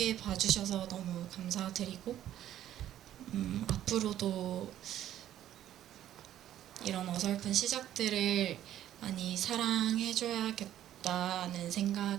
봐주셔서 너무 감사드리고 앞으로도 이런 어설픈 시작들을 많이 사랑해줘야겠다는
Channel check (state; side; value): quieter; left; 11.9 dB